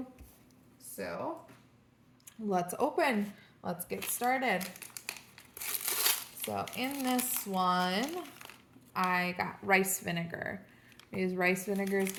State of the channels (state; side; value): identical; both; correlation 1.00